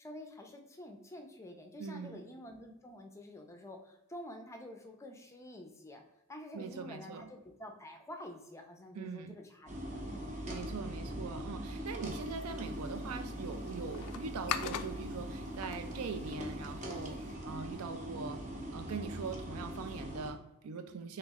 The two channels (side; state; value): both; normal; correlation 0.34